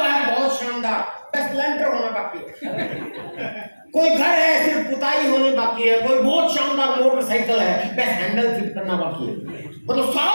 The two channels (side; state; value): both; inverted; correlation -1.00